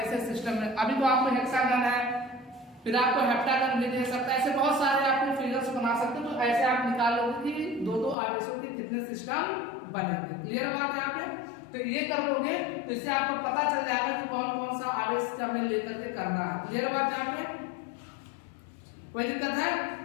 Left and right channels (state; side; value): drops out; right; at 8.2 s